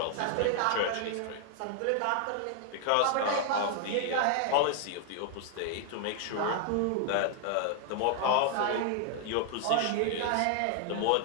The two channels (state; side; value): different; both; correlation 0.00